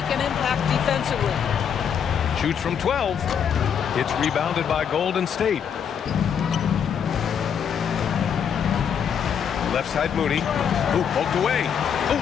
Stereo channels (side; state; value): right; quieter; 7.8 dB